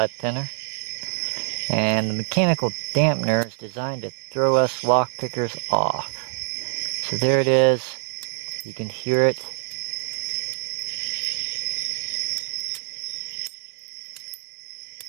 And the mechanical dampener is designed to throw us lockpickers off. So there it is. You can hear it.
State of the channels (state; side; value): silent; left; digital silence